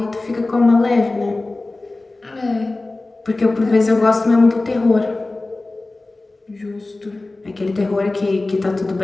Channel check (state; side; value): quieter; right; 3.1 dB